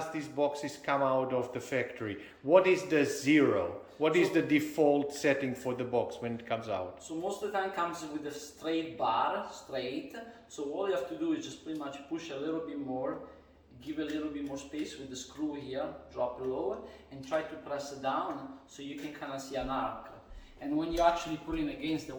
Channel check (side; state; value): both; identical; correlation 1.00